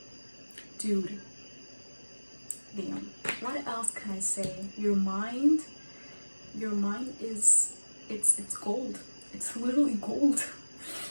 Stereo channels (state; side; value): inverted; both; correlation -1.00